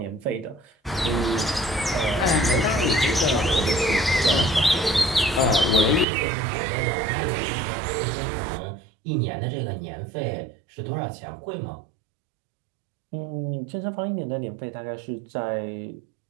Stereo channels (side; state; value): left; drops out; at 6.1 s